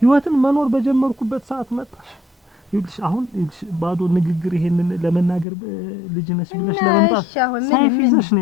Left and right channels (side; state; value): right; drops out; at 5.5 s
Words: ህይወትን መኖር በጀመርኩበት ሰዓት መጣሽ። ይልሽ አሁን ባዶ ንግግር ይሄንን ለመናገር ልጅ ነሽ ብለሽ ለመምጣት ሰይፍ ይዘሽ ነው